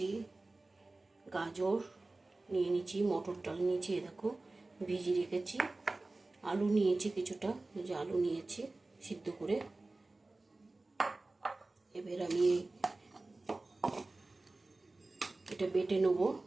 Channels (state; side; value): quieter; left; 3.1 dB